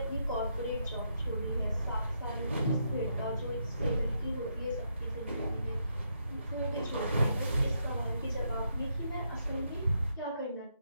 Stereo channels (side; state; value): both; inverted; correlation -0.78